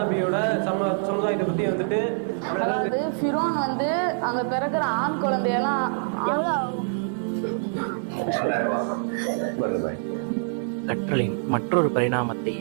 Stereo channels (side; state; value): left; silent; digital silence